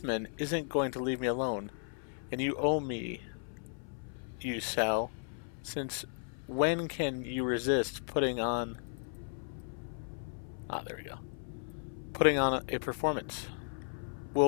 isn't going to leave me alone, and you owe me, you Sal. Since when can you resist putting on... Ah, there we go. Putting on a performance.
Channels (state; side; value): silent; right; 54 dB below the other